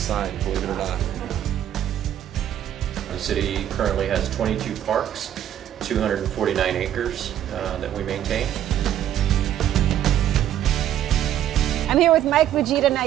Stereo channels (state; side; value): quieter; left; 11.2 dB